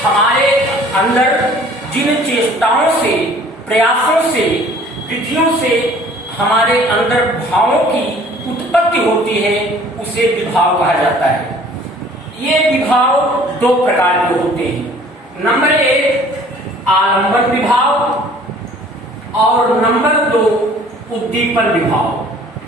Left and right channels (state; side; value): normal; both; correlation 0.52